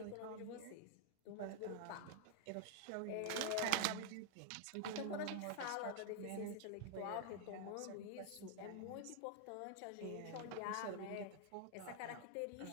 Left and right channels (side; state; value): both; different; correlation 0.00